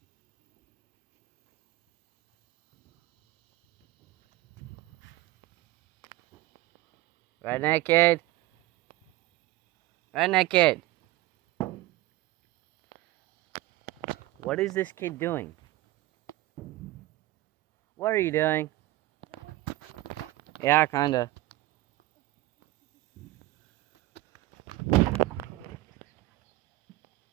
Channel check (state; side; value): quieter; left; 17.7 dB